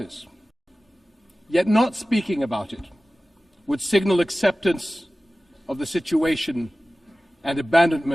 Yet not speaking about it would signal acceptance of the situation and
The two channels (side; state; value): both; normal; correlation 0.96